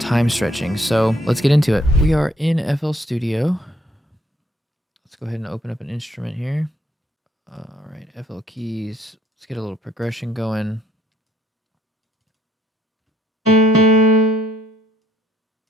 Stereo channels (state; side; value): normal; both; correlation 0.66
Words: time stretching. So let's get into it. We are in FL Studio. Let's go ahead and open up an instrument here. All right, FL keys. Let's get a little progression going.